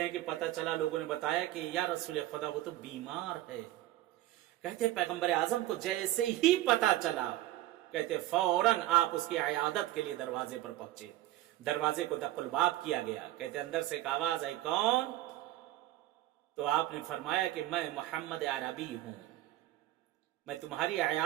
ہیں کہ پتا چلا، لوگوں نے بتایا کہ یا رسول خدا وہ تو بیمار ہے. کہتے ہیں پیغمبر اعظم کو جیسے ہی پتا چلا، کہتے فوراً آپ اس کی عیادت کے لیے دروازے پر پہنچے. دروازے کو دق الباب کیا گیا. کہتے اندر سے ایک آواز آئی، کون؟ تو آپ نے فرمایا کہ میں محمد عربی ہوں، میں تمہاری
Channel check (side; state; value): left; quieter; 15.2 dB